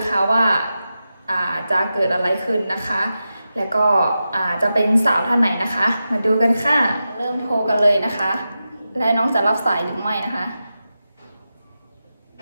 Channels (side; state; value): both; inverted; correlation -0.91